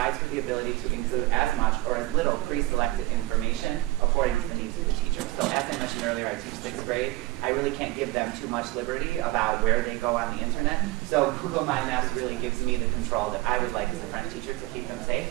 for the ability to include as much or as little pre-selected information according to the needs of the teacher. So as I mentioned earlier, I teach 6th grade. I really can't give them too much liberty about where they go on the internet. So Google My Maps really gives me the control that I would like as a French teacher to keep them safe,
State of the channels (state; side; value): quieter; left; 20.0 dB